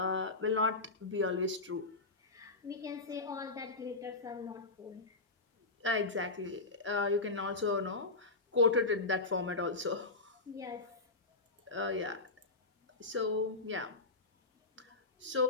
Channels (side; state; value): right; quieter; 3.4 dB